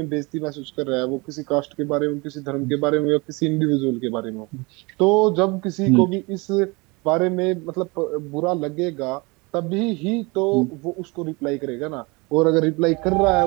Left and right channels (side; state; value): left; quieter; 26.7 dB